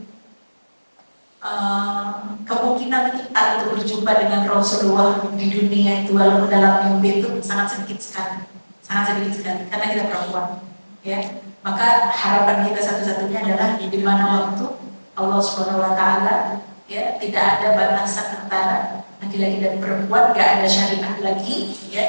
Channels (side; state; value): both; inverted; correlation -1.00